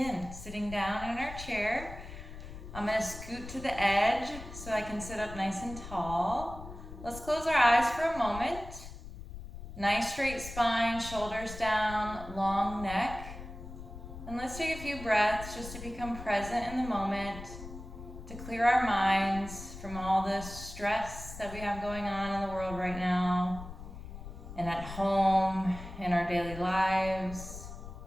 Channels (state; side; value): noise; left; rumble, 12 dB below the sound